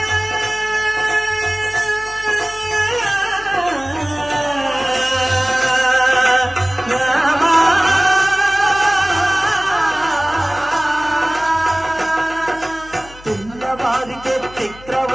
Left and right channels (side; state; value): left; noise; hum, 20 dB below the sound